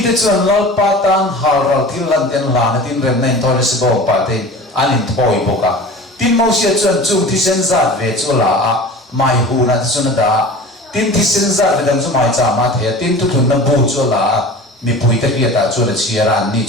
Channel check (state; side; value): normal; both; correlation 0.38